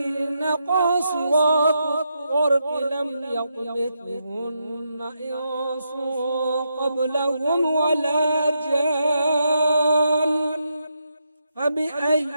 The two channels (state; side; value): inverted; both; correlation -0.83